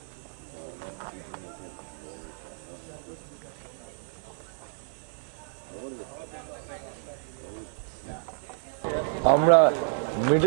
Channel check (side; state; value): left; silent; digital silence